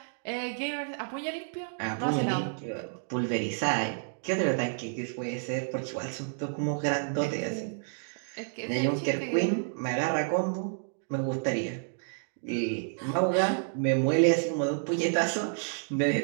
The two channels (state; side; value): silent; left; digital silence